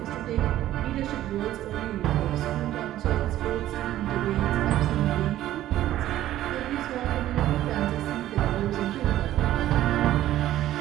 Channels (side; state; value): left; quieter; 13.6 dB